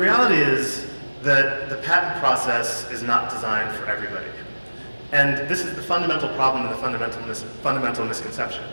is that the patent process is not designed for everybody. And this is the fundamental problem and the fundamental misconception.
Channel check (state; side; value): inverted; both; correlation -1.00